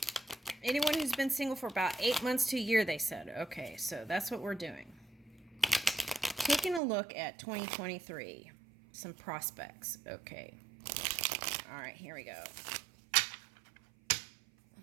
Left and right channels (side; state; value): left; drops out; at 6.8 s